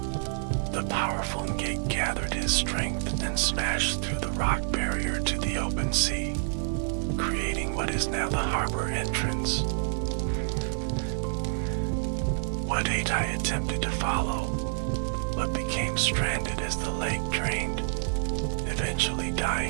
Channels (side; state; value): left; silent; digital silence